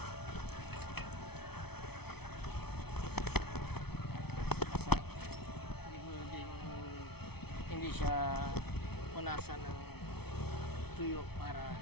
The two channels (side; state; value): right; late; 0.97 ms